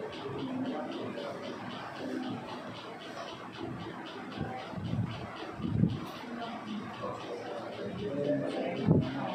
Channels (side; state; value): both; identical; correlation 1.00